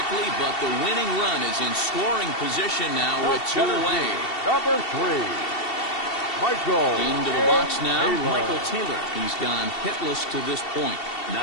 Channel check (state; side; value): late; right; 2.7 ms